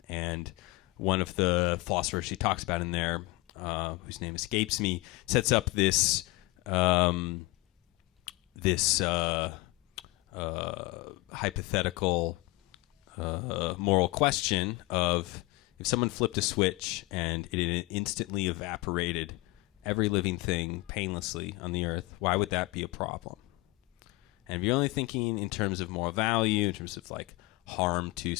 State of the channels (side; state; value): right; quieter; 22.9 dB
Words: And one of the philosophers she talks about in there, whose name escapes me, sets up this hypothetical moral question of, if someone flipped a switch and it instantly evaporated every living thing painlessly on the earth, why would that be a problem? And if you're only thinking in terms of moral value, in terms of like harm to